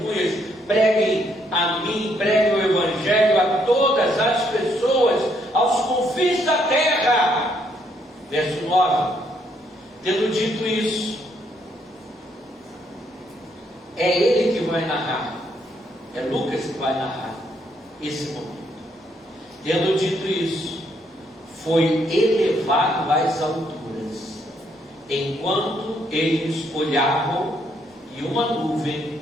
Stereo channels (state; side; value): normal; both; correlation 0.72